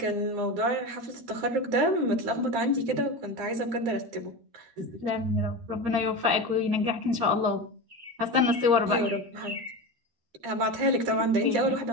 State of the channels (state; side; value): late; left; 13 ms